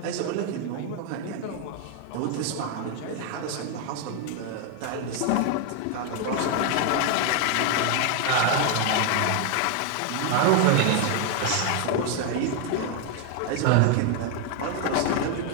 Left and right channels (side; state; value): both; different; correlation 0.01